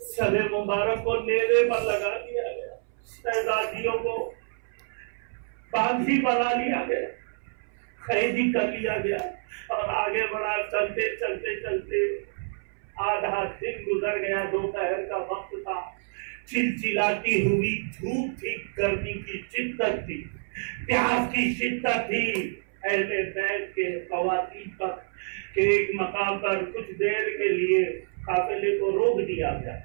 سر مبارک کو نیزے پر لگا دیا گیا. شہزادیوں کو باندھی بنا لیا گیا، قیدی کر لیا گیا اور آگے بڑھا. چلتے چلتے چلتے آدھا دن گزر گیا. دوپہر کا وقت تھا. چلچلاتی ہوئی دھوپ تھی، گرمی کی شدت تھی، پیاس کی شدت تھی. اہل بیت کے خواتین پر کہ ایک مقام پر کچھ دیر کے لیے قافلے کو روک دیا گیا.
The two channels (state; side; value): silent; left; 60 dB below the other